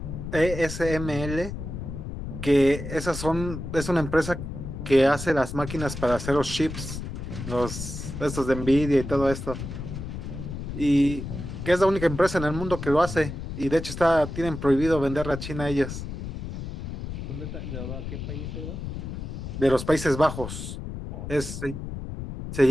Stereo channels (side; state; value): left; noise; rumble, 7 dB below the sound